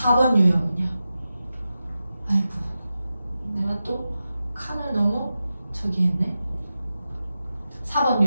유형은요? 아이고 내가 또 칸을 너무 저기 했네. 4번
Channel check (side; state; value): both; inverted; correlation -0.92